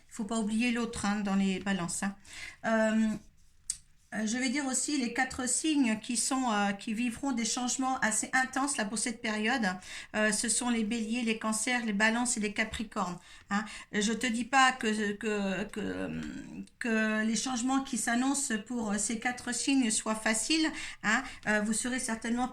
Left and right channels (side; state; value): both; identical; correlation 1.00